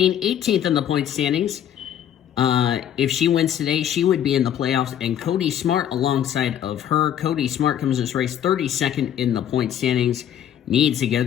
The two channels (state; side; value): quieter; right; 10.1 dB